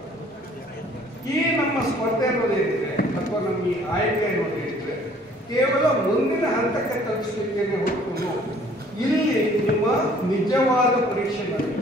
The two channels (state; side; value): normal; both; correlation 0.56